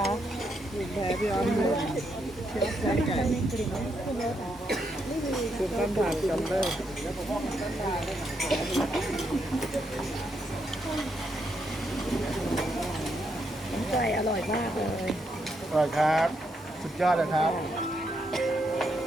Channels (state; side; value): normal; both; correlation 0.79